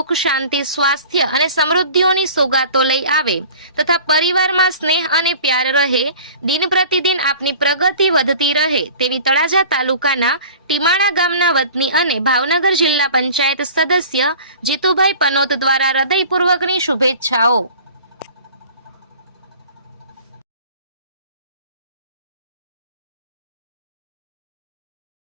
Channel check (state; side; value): inverted; both; correlation -0.43